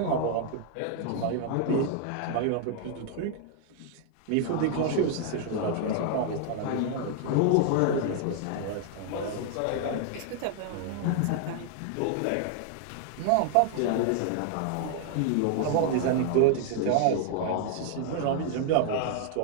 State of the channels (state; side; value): different; both; correlation 0.00